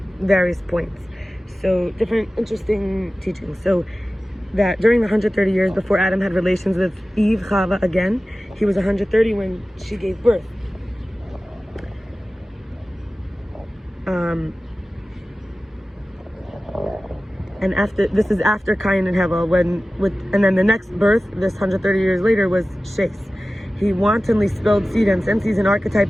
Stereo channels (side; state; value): both; normal; correlation 0.96